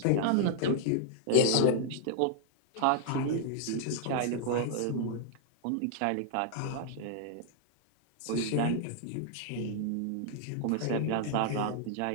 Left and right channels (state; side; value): different; both; correlation -0.01